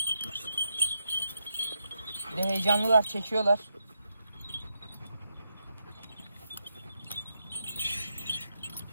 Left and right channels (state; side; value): inverted; both; correlation -0.83